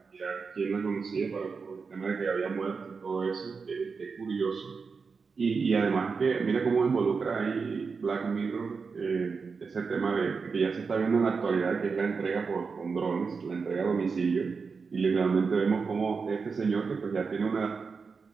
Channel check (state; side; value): quieter; left; 5.1 dB